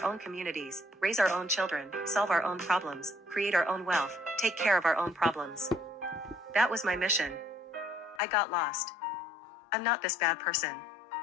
own communities, raise our own children, solve our own problems, create our own wealth, take care of our own problems. That was my mission. I got lost. I'm not this bad person.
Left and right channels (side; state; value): right; drops out; at 8.2 s